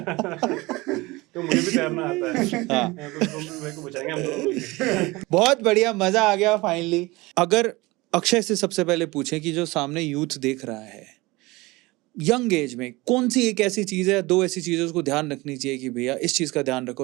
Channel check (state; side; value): quieter; left; 22.1 dB